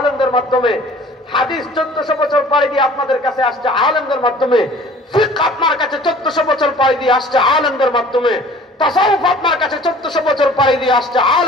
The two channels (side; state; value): both; normal; correlation 0.49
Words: মাধ্যমে, হাদিস 1400 বছর পাড়ি দিয়ে আপনাদের কাছে আসছে আলেমদের মাধ্যমে, ফিকহ আপনার কাছে 1400 বছর পাড়ি দিয়ে আসছে আলেমদের মাধ্যমে, তাসাউফ আপনার কাছে 1400 বছর পাড়ি দিয়ে আসছে